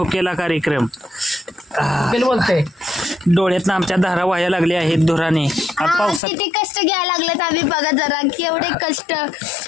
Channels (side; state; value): right; drops out; at 6.2 s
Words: कार्यक्रम. बोलते डोळ्यात आमच्या धारा व्हायला लागल्या आहेत धुराने. पावसात किती कष्ट घ्यायला लागलेत आम्ही बघा जरा केवढे कष्ट